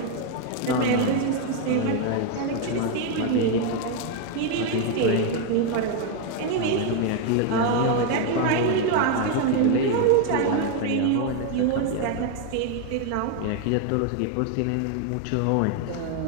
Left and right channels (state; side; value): different; both; correlation 0.01